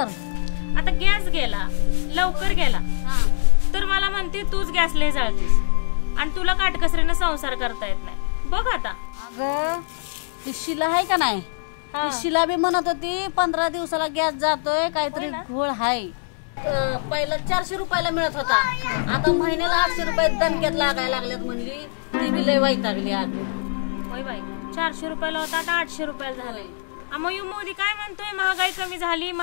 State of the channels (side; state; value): right; silent; 63 dB below the other